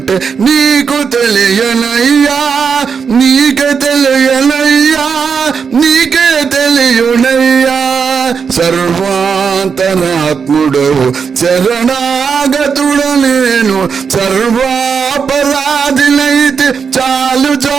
నీకు తెలియనయ్యా, నీకే తెలియనయ్యా, నీకే తెలియనయ్యా. సర్వాంతరాత్ముడవు శరణాగతుడ నేను, సర్వాపరాధినైతే చాలు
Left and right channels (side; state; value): left; quieter; 6.1 dB